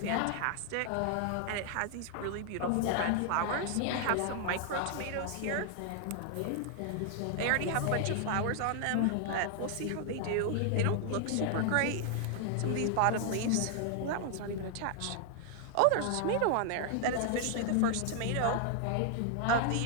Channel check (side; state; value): both; different; correlation 0.00